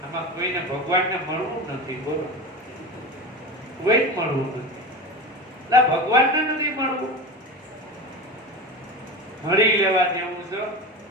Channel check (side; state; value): both; normal; correlation 0.27